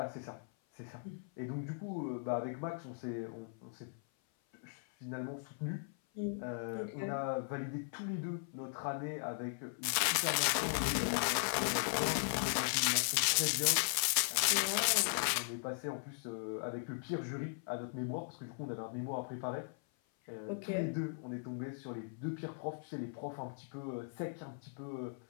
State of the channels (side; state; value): right; silent; 52 dB below the other